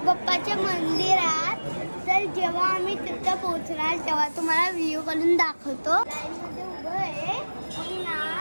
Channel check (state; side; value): inverted; both; correlation -1.00